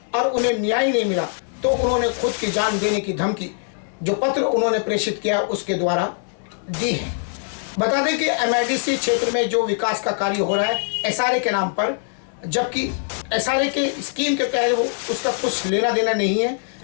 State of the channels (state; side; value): silent; right; digital silence